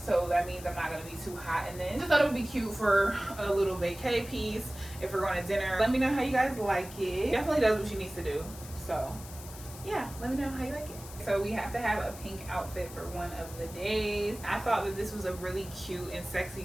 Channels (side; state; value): left; noise; hiss, 15 dB below the sound